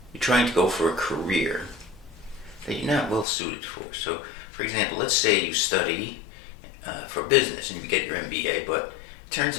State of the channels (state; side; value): drops out; right; at 3.2 s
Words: you're trying to go for a career that you're not well suited for. So, for example, let's say you study for business and you get your MBA, but it